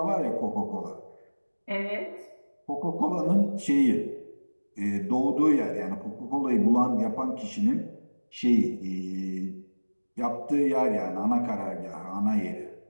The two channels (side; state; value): both; inverted; correlation -1.00